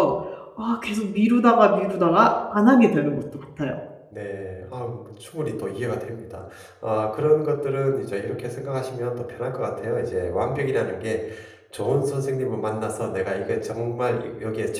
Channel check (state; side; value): identical; both; correlation 1.00